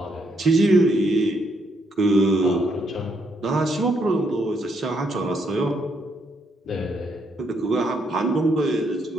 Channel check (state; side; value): normal; both; correlation 0.75